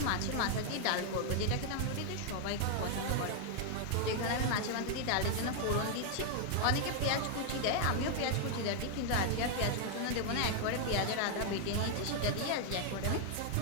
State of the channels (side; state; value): both; different; correlation 0.00